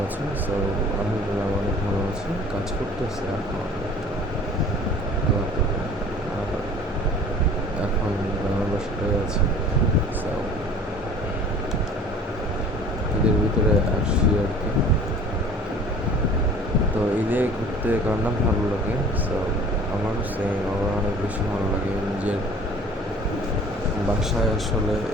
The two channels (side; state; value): both; normal; correlation 0.48